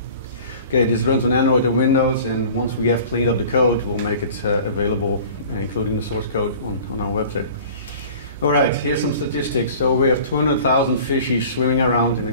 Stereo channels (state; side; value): inverted; both; correlation -0.44